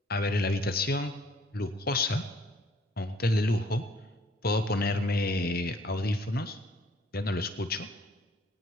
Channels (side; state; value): both; normal; correlation 0.60